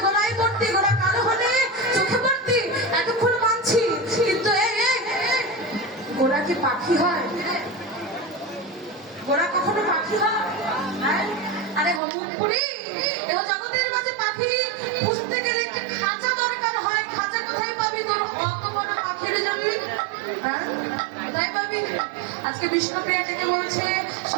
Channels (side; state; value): left; drops out; at 12.0 s